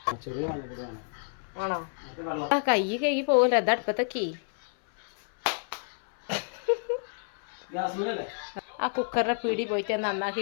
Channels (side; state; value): right; silent; 58 dB below the other